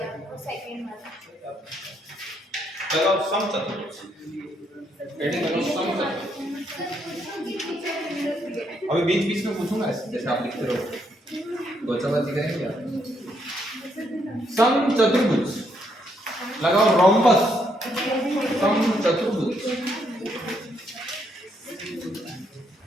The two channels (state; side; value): normal; both; correlation 0.74